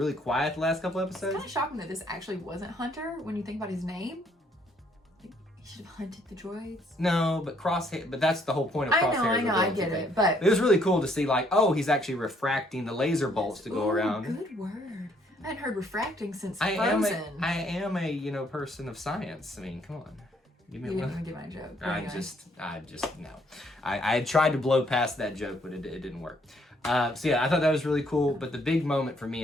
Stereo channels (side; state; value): both; normal; correlation 0.67